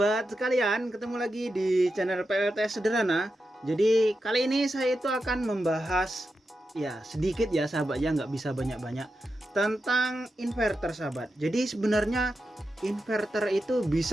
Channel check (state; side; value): normal; both; correlation 0.89